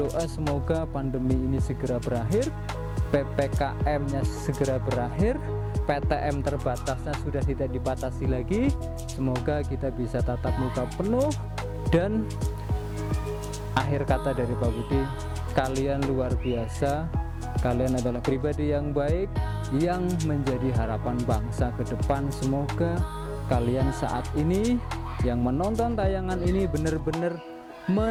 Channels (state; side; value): identical; both; correlation 1.00